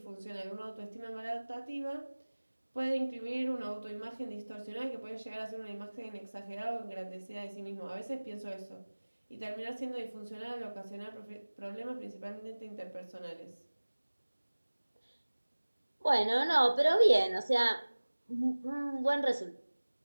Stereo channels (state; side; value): inverted; both; correlation -1.00